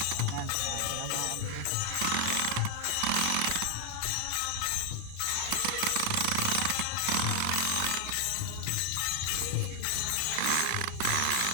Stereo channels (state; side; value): different; both; correlation 0.00